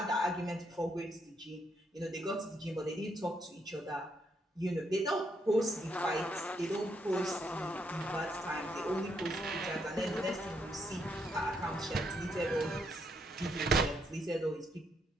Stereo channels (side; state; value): both; normal; correlation 0.76